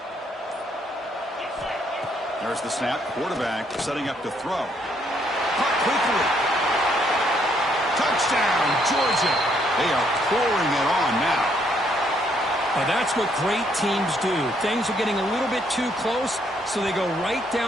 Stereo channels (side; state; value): both; normal; correlation 0.71